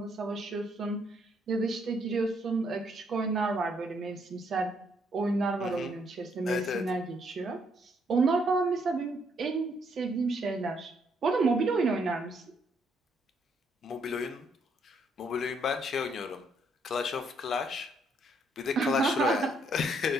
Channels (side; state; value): both; normal; correlation 0.71